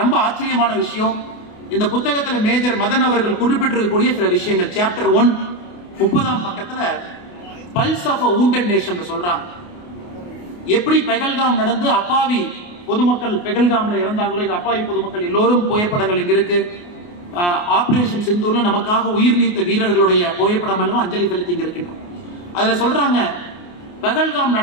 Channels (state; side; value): late; right; 28 ms